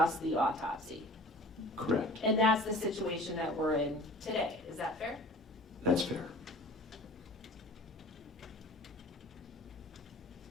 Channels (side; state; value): both; normal; correlation 0.44